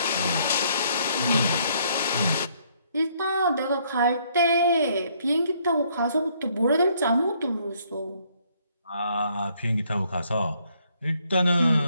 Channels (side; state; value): both; inverted; correlation -0.67